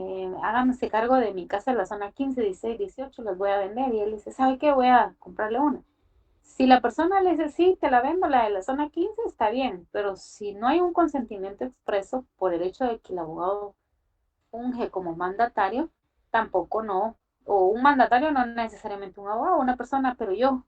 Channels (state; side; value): identical; both; correlation 1.00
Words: háganse cargo de mi casa en la zona 15, 16, 18, las voy a vender. Y él dice, ¿sabe qué? Voy a comprarle una. Si la persona le dice, sí, te la vendo, la de la zona 15, está bien, pero si no hay un consentimiento expreso por el hecho de que el abogado funge como mandatario, tampoco no, o un mandatario no necesariamente un abogado, una persona, pero yo